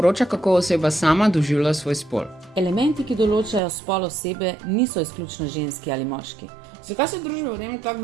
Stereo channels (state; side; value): drops out; left; at 3.6 s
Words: kako oseba sama doživlja svoj spol. elementi, ki določajo spol osebe, niso izključno ženski ali moški. Zakaj se družba v tem tako